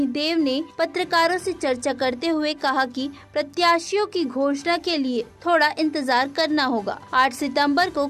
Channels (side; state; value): both; identical; correlation 1.00